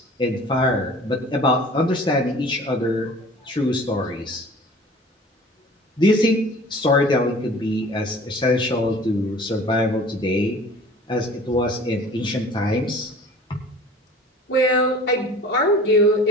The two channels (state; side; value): normal; both; correlation 0.45